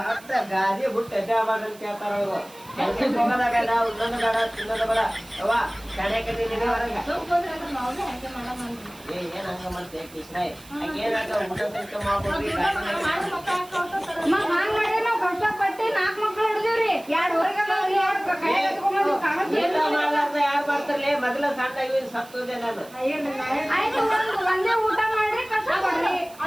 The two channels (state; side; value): noise; right; hiss, 22 dB below the sound